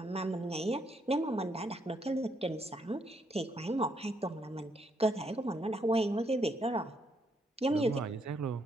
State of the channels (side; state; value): both; normal; correlation 0.75